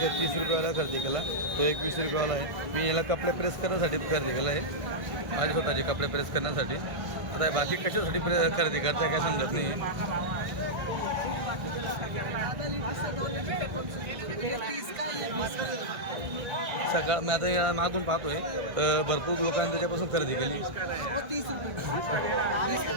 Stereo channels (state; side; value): late; left; 1.6 ms